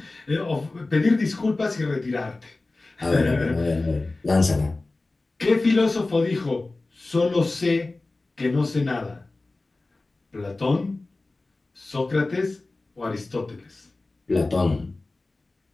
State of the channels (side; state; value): right; quieter; 3.2 dB